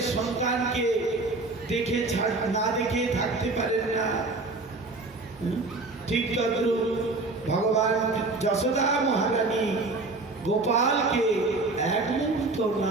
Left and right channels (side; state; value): left; quieter; 3.3 dB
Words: সন্তানকে দেখে না দেখে থাকতে পারেন না, ঠিক তদ্রূপ ভগবান যশোদা মহারানী গোপালকে এক মুহূর্ত